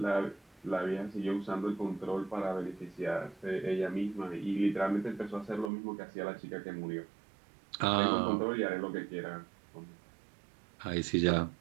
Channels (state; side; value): drops out; left; at 5.7 s